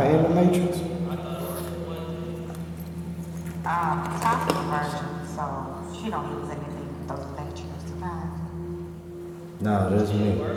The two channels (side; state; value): both; identical; correlation 1.00